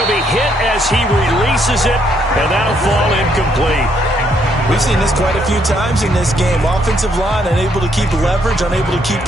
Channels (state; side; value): normal; both; correlation 0.71